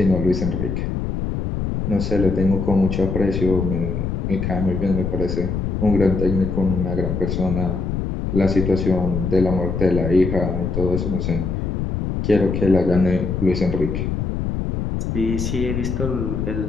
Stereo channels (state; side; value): noise; left; rumble, 2 dB below the sound